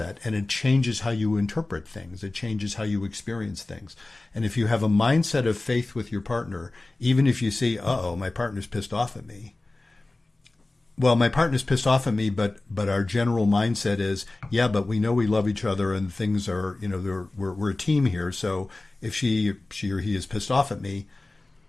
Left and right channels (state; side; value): quieter; right; 3.0 dB